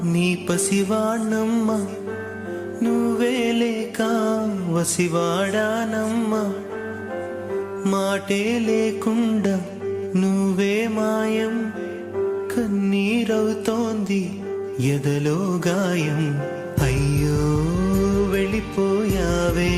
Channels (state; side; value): identical; both; correlation 1.00